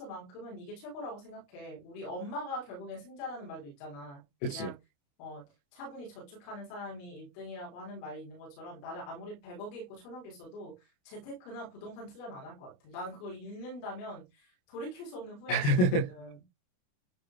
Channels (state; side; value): late; right; 28 ms